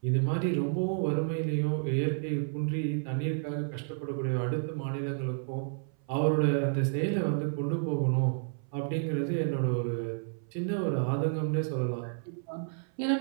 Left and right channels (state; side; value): silent; left; 57 dB below the other